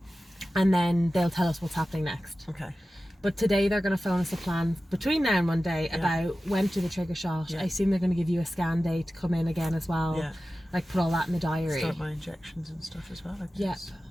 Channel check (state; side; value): normal; both; correlation 0.95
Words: and then they'll tell us what's happening next. Okay. But today they're going to phone us a plan between now and Monday about when to do the trigger shot. I assume they're going to give you a scan day to come in again as well. Yeah. Like put all that in the diary. Start my injections and stuff as well, I guess.